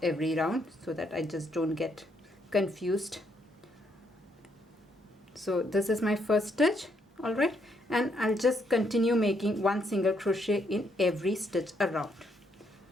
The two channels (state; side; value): normal; both; correlation 0.74